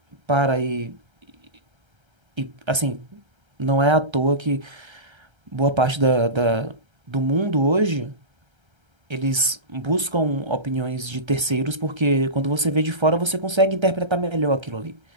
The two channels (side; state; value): left; late; 1.3 ms